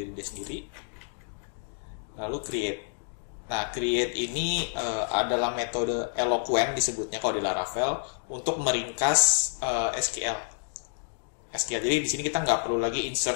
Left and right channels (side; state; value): right; silent; digital silence